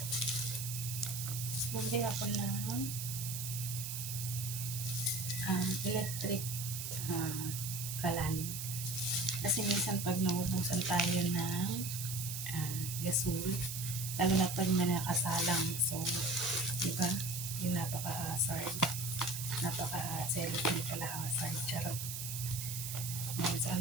Bumili ako ng electric kalan. Kasi minsan pag naubusan tayo ng gasol, lalo na pag may nakasalang. So, diba? Yung napaka-hazard. Napaka-celebrate pala hazard. Charot. Ngayon, so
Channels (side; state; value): right; noise; hiss, 5 dB below the sound